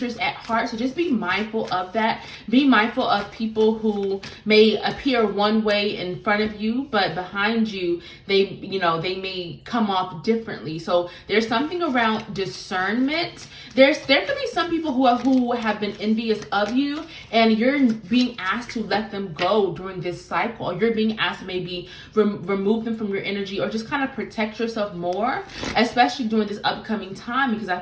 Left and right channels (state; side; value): identical; both; correlation 1.00